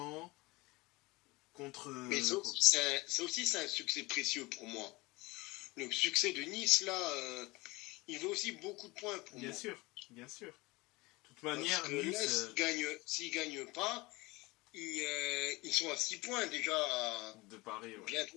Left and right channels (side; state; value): right; quieter; 22.8 dB